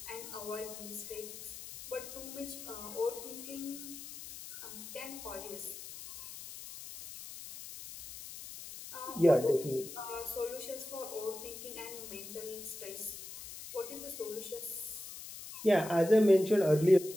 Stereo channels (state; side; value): noise; left; hiss, 12 dB below the sound